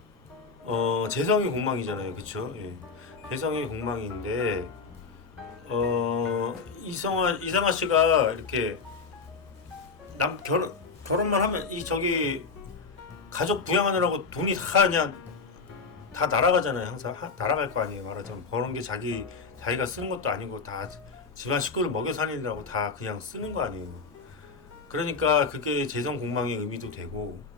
재성이 공망이잖아요, 그쵸? 예. 재성이 공망인데 이상하 씨가 이렇게 결혼만 하면 저기 가족 부양하느라고 돈이 다 그냥 다 날아가잖아요. 항상 날아갈 거 아니에요. 말하자면 버는 게 자기가 쓰는 것도 아니고 다 집안 식구를 먹여 살리느라고 다 그냥 쓰는 거 아니에요. 그러니까 그게 재성 공망의 의미도 되고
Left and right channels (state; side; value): quieter; right; 4.8 dB